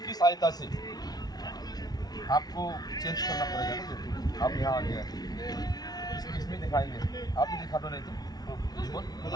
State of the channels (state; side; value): late; right; 0.19 ms